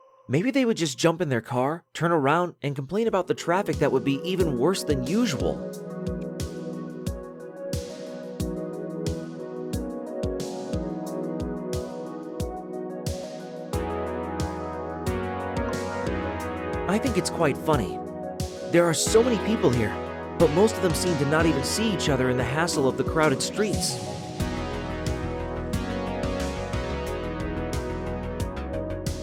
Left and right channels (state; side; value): identical; both; correlation 1.00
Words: Maybe they would just jump in their car, turn around, and complain about the traffic that would be even worse than usual. I think it's quite funny. There are so many people here, but most of them seem to not even see each other in the hassle of the crowded streets.